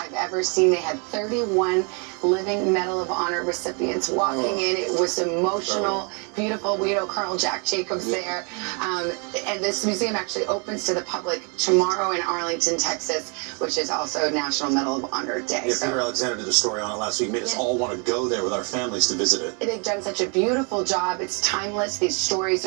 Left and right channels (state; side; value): quieter; left; 35.0 dB